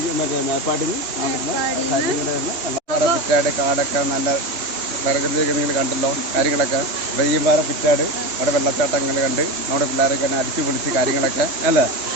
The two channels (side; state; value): left; late; 2.9 ms